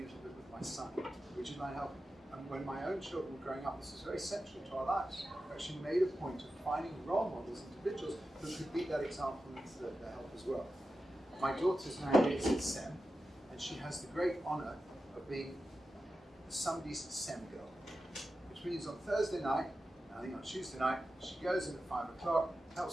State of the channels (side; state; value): both; normal; correlation 0.92